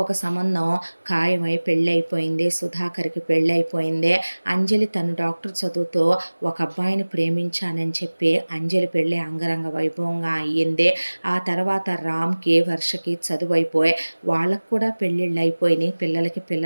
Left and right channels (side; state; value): both; inverted; correlation -1.00